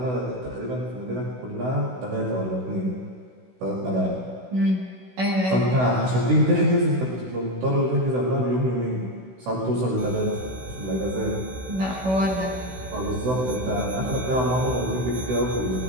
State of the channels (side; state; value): left; late; 16 ms